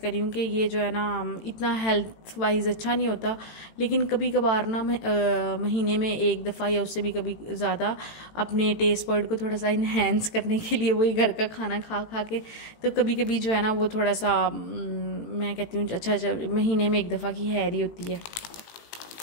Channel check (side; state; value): right; late; 18 ms